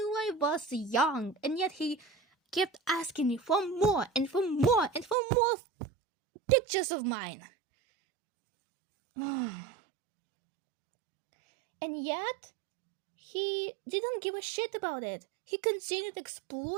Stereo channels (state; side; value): drops out; left; at 5.2 s